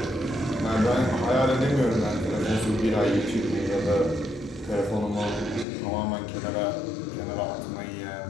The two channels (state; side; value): drops out; right; at 5.7 s